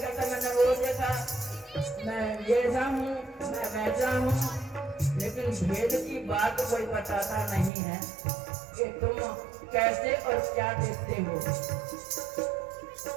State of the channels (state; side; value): drops out; left; at 7.7 s